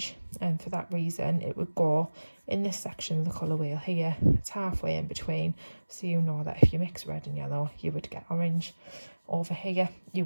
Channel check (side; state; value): both; inverted; correlation -1.00